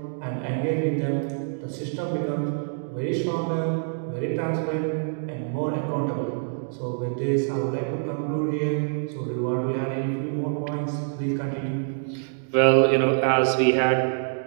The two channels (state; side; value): silent; left; digital silence